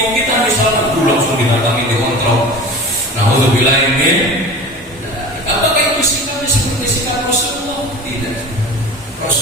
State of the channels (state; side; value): normal; both; correlation 0.36